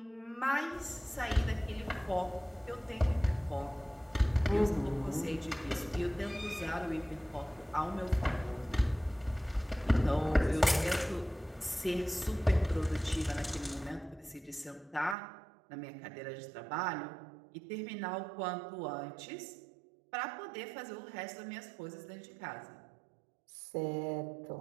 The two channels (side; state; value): left; drops out; at 15.2 s